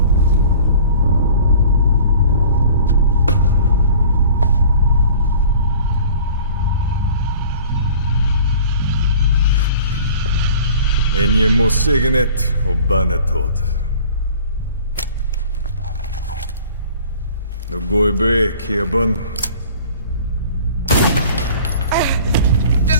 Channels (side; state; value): both; inverted; correlation -0.46